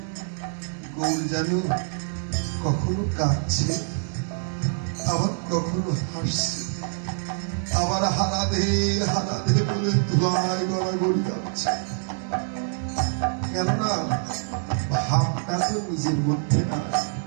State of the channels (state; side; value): silent; left; digital silence